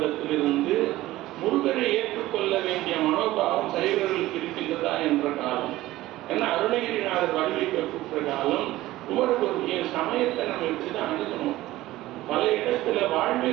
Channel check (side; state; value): left; quieter; 16.6 dB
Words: முருகனை ஏற்றுக்கொள்ள வேண்டிய மனோபாவம் சைவர்களுக்கு இருக்கின்றதா என்ற காலம். ஏன்னா அருணகிரிநாதர் வடிவமைக்கப்பட்ட காலம். குமரகுருவிய சமயத்தை நம்ம இப்படிதான் அணுகணும். பல இடத்துல